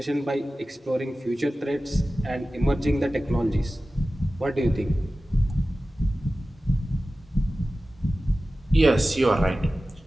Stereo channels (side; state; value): both; normal; correlation 0.96